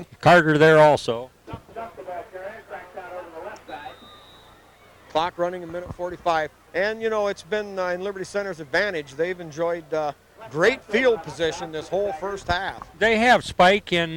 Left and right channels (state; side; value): identical; both; correlation 1.00